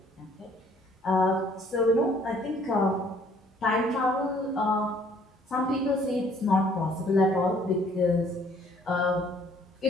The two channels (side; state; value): both; normal; correlation 0.60